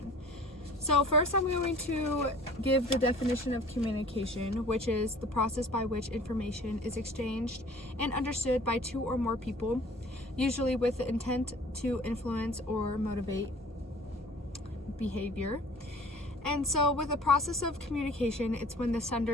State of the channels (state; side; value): normal; both; correlation 0.48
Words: So first I'm going to give the definition of communication, which is the process by which information is exchanged and understood by two or more people, usually with the intent to influence or motivate behavior. And so with the process of communication, it's when the